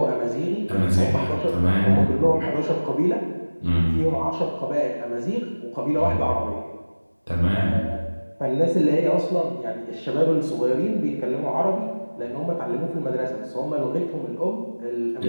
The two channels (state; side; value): inverted; both; correlation -1.00